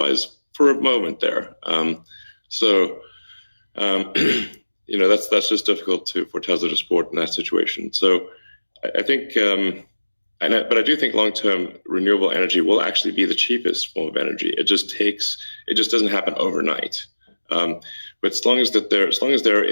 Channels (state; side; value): inverted; both; correlation -1.00